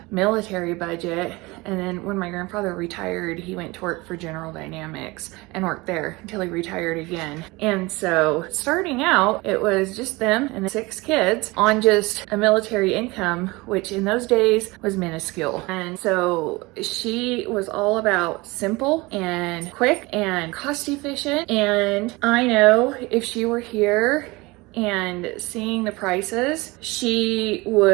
military budget. And then when my grandfather retired, he went to work for General Dynamics and worked there until he retired again. And so starting out, it was just them and 6 kids on just a military income, which in those days was minuscule. And so she was all about simple and quick and cost efficient. And I know if she were here and seeing the prices, she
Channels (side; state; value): left; quieter; 23.1 dB